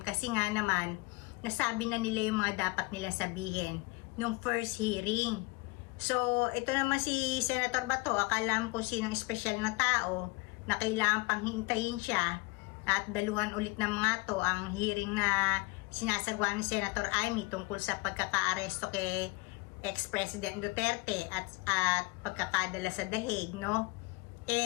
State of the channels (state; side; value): quieter; right; 24.8 dB